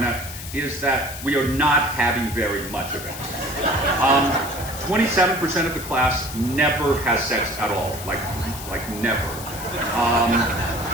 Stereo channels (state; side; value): noise; left; hiss, 11 dB below the sound